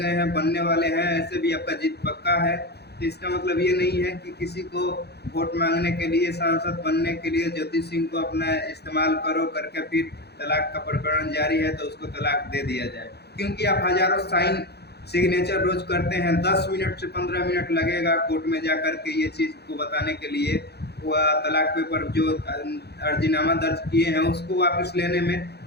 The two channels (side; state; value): right; late; 0.48 ms